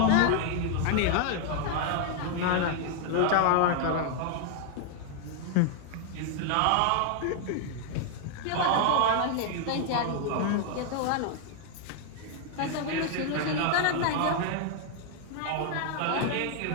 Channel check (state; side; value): different; both; correlation 0.00